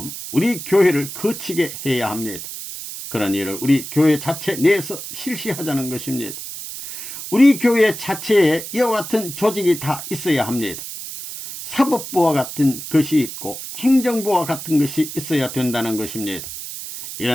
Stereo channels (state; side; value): noise; right; hiss, 9 dB below the sound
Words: 우리 교회를 거치게 해야 합니다. 그런 일을 우리 교회 자체 내에서 실시하자는 것입니다. 우리 교회 자체에 이와 같은 조직이 다 있어야 합니다. 사법부와 같은 것이 있고 행정부와 같은 것이 있어야 된다는 것입니다.